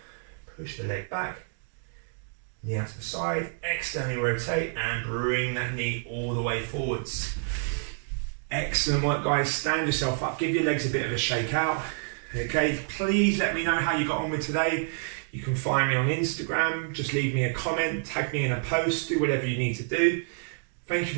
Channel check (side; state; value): left; silent; 59 dB below the other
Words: push the leg back, knee out to the side, externally rotate, and bring that knee all the way forwards. Excellent work, guys. Stand yourself up, give your legs a bit of a shake out. Okay, please let me know how you got on with today. You can find me on Instagram, just leave me a comment, tag me in a post, do whatever you need to do. Thank